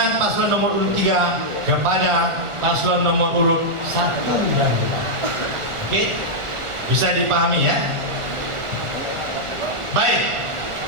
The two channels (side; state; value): left; late; 1.4 ms